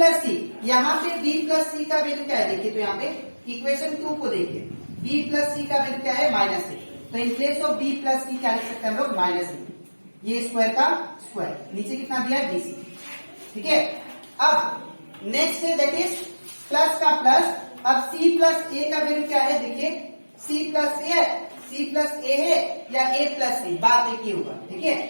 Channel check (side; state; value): both; inverted; correlation -1.00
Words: सी, यहाँ पे बी प्लस सी का वैल्यू क्या है देखिए, तो यहाँ पे इक्वेशन 2 को देखिए, बी प्लस सी का वैल्यू क्या है -6। तो in place of B plus C क्या लिख सकते हैं हम लोग, -6। ये स्क्वायर का स्क्वायर, नीचे कितना दिया है, BC, ठीक है। अब नेक्स्ट है दैट इज प्लस का प्लस। अब C प्लस ए का वैल्यू क्या है देखिए, C प्लस ए है या A प्लस सी, बात एक ही होगा, ठीक है।